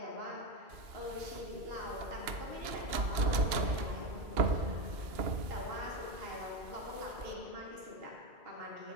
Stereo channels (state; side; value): late; left; 2.8 ms